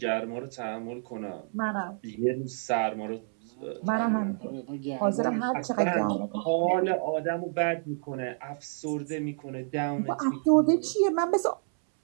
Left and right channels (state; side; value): silent; left; 59 dB below the other